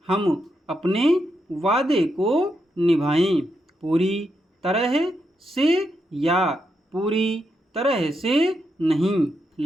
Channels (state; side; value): normal; both; correlation 0.83